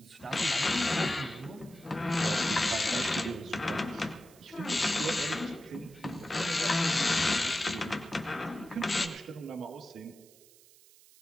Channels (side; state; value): right; noise; hiss, 25 dB below the sound